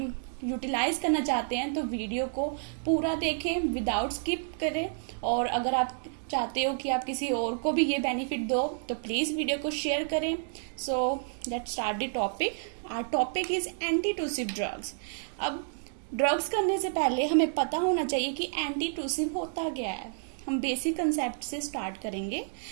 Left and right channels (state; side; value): silent; left; digital silence